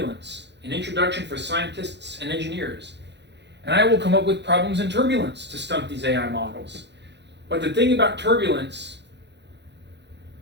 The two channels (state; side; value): late; left; 0.50 ms